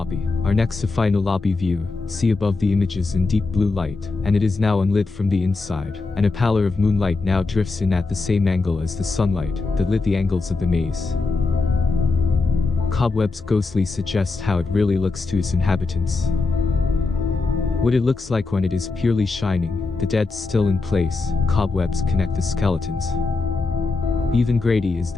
Our next to final lobby view, see above the images in deep blue light, and it is now unlit from the inside, and a pallor of moonlight now drifts in at the same angle as the sunlight that lit the angles of the maze. Cobwebs ghostly suggest how it really looks to its inhabitants. What it looks like when it is purely shining, the dead still in place, cobwebs connect the skeletons. Even Grady is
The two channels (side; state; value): right; quieter; 3.8 dB